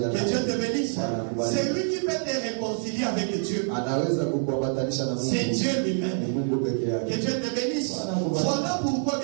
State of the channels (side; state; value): left; silent; 56 dB below the other